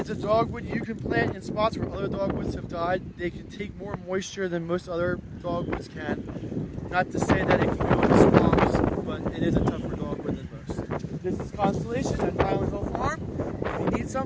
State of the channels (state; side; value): identical; both; correlation 1.00